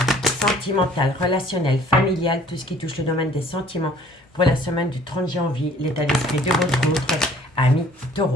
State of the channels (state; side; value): normal; both; correlation 0.55